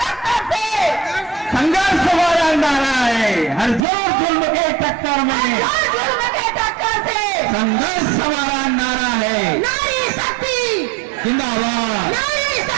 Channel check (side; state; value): left; drops out; at 3.8 s